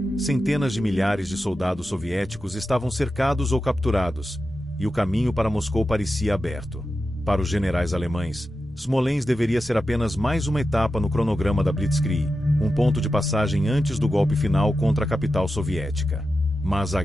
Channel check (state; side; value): normal; both; correlation 0.91